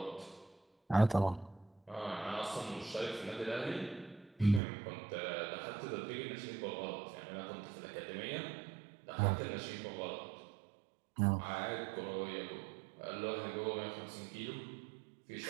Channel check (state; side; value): drops out; left; at 4.6 s